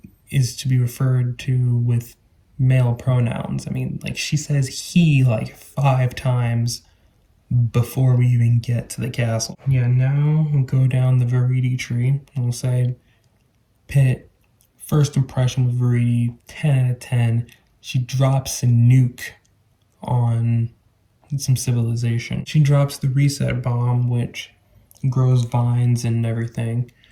is to be referred to with male pronouns. I mean, like, she says he like 5 times before we even get to the castle. Yeah, now we'll go down the Viridi tree and we'll say Pit, first impression with Viridi, 10 out of 10. She drops a nuke on some civilization. She drops the reset bomb, which grows vines and everything,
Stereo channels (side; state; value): both; identical; correlation 1.00